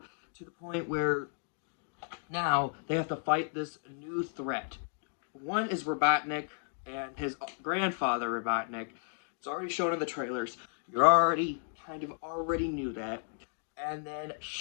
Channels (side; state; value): right; silent; digital silence